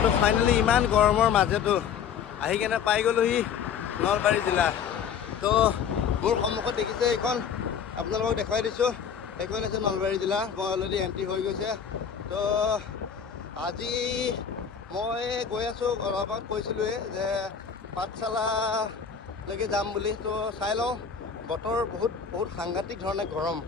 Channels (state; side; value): quieter; right; 7.3 dB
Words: তো ফাইনেলি ইমান গৰমৰ মাজতো আহি কেনে পাই গ'লোহি নলবাৰী জিলা। তো মোৰ সন্মুখত দেখিছে এইখন, আপোনালোকক দেখুৱাই দিছোঁ, এইখন আছে নলবাৰী জিলা। মই অলৰেডি এণ্ট্ৰি হৈ গৈছে। তো আজি মই গৈ আছোঁ, অলপ আগত কৈছিলোঁৱে যে পাঠশালালৈকে যাম বুলি। তো চাই লওঁ, বতৰ বহুত সাংঘাতিক ধৰণে গৰম।